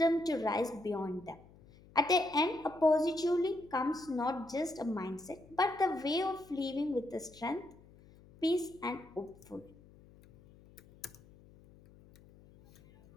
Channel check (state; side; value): noise; left; hum, 24 dB below the sound